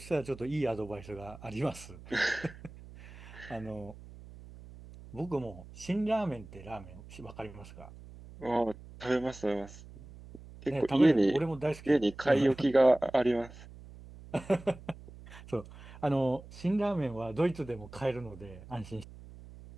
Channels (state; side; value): noise; right; hum, 17 dB below the sound